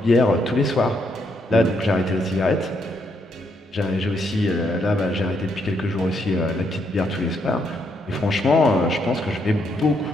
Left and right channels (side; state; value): both; normal; correlation 0.75